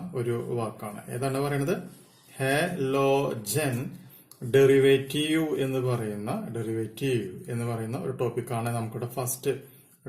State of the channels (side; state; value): both; identical; correlation 1.00